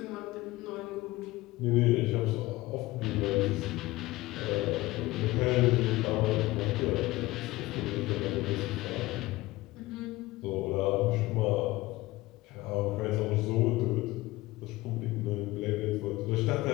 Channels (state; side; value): quieter; right; 19.3 dB